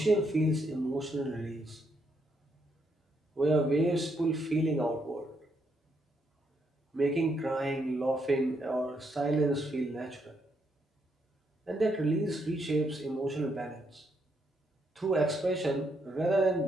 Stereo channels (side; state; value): both; normal; correlation 0.76